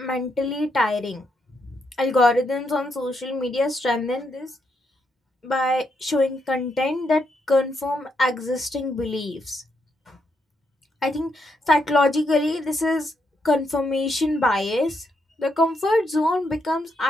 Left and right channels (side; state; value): both; normal; correlation 0.79